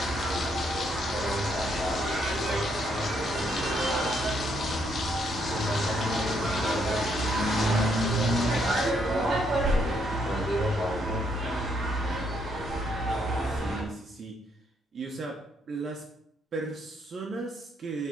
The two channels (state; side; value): normal; both; correlation 0.73